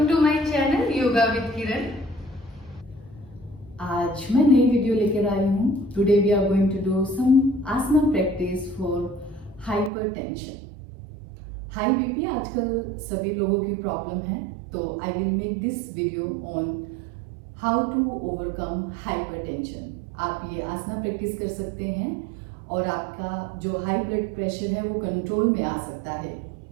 to my channel yoga with Kiran. आज मैं नई वीडियो लेकर आई हूँ। Today we are going to do some asana practice for hypertension. High BP आजकल सभी लोगों की प्रॉब्लम है, तो I will make this video on how to overcome hypertension. आप ये आसना प्रैक्टिस कर सकते हैं और आपका जो हाई ब्लड प्रेशर है वो कंट्रोल में आ सकता है।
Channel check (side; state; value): left; drops out; at 9.9 s